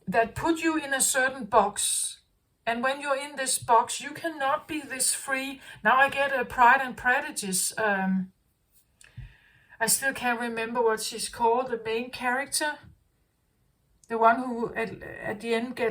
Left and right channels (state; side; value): identical; both; correlation 1.00